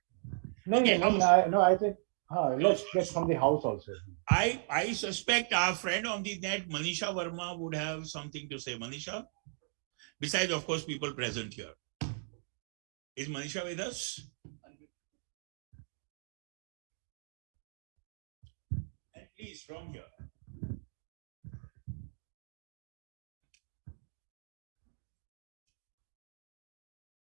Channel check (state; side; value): silent; left; digital silence